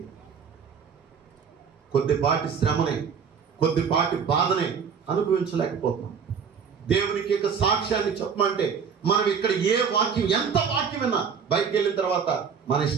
కొద్దిపాటి శ్రమనే, కొద్దిపాటి బాధనే అనుభవించలేకపోతున్నాం. దేవునికి యొక్క సాక్ష్యాన్ని చెప్పమంటే మనం ఇక్కడ ఏ వాక్యం, ఎంత వాక్యం విన్నా బయటికి వెళ్ళిన తర్వాత మన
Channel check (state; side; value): quieter; left; 6.6 dB